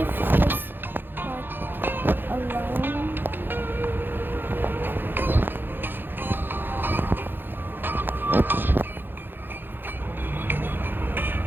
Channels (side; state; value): left; late; 0.098 ms